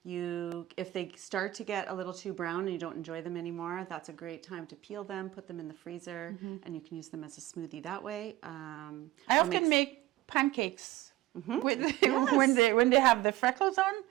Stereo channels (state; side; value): quieter; left; 16.4 dB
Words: If they start to get a little too brown and you don't enjoy them anymore, that's a great time to peel them, put them in the freezer, and you can use them as a smoothie that way. I often make pancakes. When they have the freckles on,